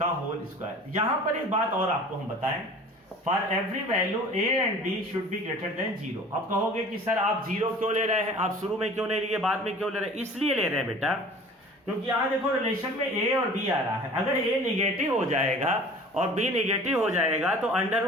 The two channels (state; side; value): normal; both; correlation 0.44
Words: होल स्क्वायर। यहां पर एक बात और आपको हम बताएं, for every value a and b should be greater than 0। अब कहोगे कि सर आप 0 क्यों ले रहे हैं, आप शुरू में क्यों नहीं लिए, बाद में क्यों ले रहे हैं, इसलिए ले रहे हैं बेटा क्योंकि यहां देखो रिलेशन में a और b आ रहा है। अगर a निगेटिव हो जाएगा और b निगेटिव हो जाएगा तो अंडर